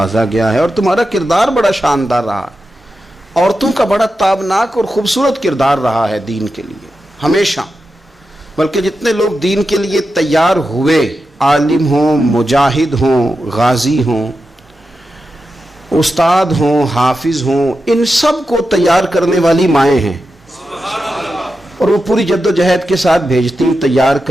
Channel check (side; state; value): both; normal; correlation 0.90